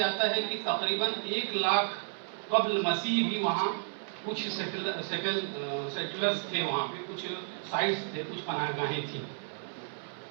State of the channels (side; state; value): left; silent; 56 dB below the other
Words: ہے کہ تقریباً 1 لاکھ قبل مسیح بھی وہاں کچھ سیٹلرز تھے، وہاں پہ کچھ سائٹس تھے، کچھ پناہ گاہیں تھیں۔